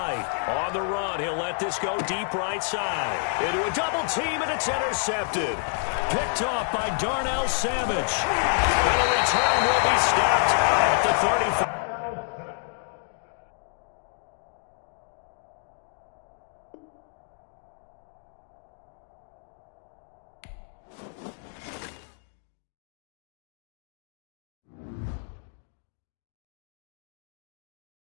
On the run, he'll let this go deep right side. Into a double team, and it's intercepted. Picked off by Darnell Savage. And the return will be stopped at the 35.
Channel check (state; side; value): silent; right; 59 dB below the other